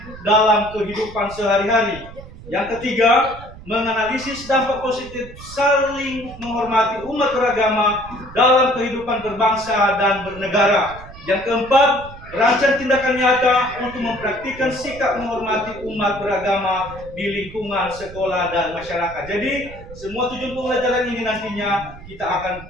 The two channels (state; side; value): noise; right; rumble, 16 dB below the sound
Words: dalam kehidupan sehari-hari. Yang ketiga, menganalisis dampak positif saling menghormati umat beragama dalam kehidupan berbangsa dan bernegara. Yang keempat, merancang tindakan nyata untuk mempraktikkan sikap menghormati umat beragama di lingkungan sekolah dan masyarakat. Jadi, semua tujuan pembelajaran ini nantinya kita akan